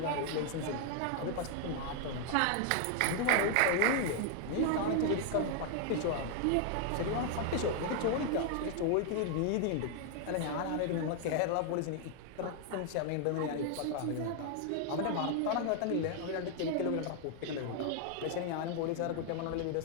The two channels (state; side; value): different; both; correlation 0.00